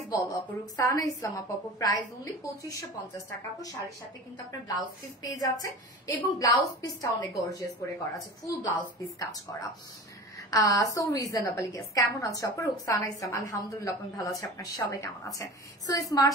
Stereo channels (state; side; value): normal; both; correlation 0.35